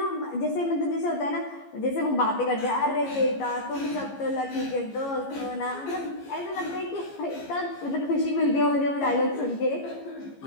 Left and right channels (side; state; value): right; late; 15 ms